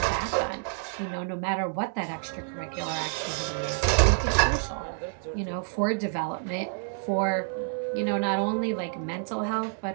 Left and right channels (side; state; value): left; silent; 55 dB below the other